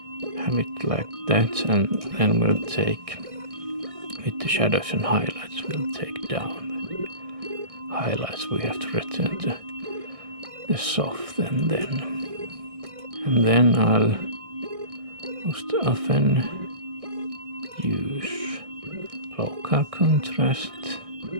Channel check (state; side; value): late; left; 1.6 ms